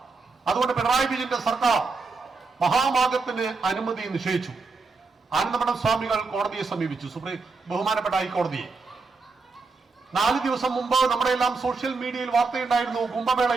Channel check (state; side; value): quieter; left; 4.2 dB